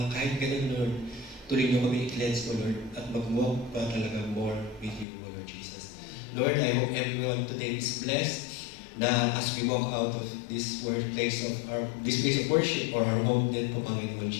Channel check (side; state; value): right; drops out; at 5.1 s